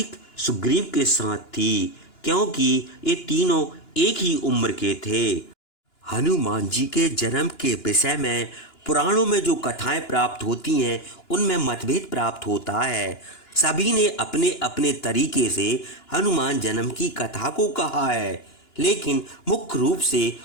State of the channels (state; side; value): late; right; 2.9 ms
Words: सुग्रीव के साथ थी, क्योंकि ये तीनों एक ही उम्र के थे। हनुमान जी के जन्म के विषय में पुराणों में जो कथाएं प्राप्त होती हैं उनमें मतभेद प्राप्त होता है। सभी ने अपने अपने तरीके से हनुमान जन्म की कथा को कहा है, लेकिन मुख्य रूप से